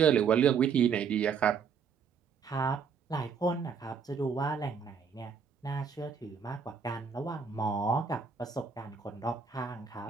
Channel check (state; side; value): quieter; left; 6.3 dB